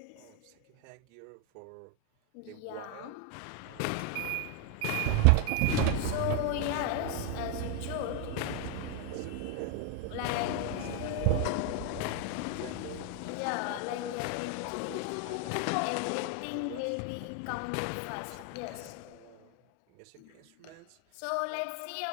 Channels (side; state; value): both; different; correlation 0.01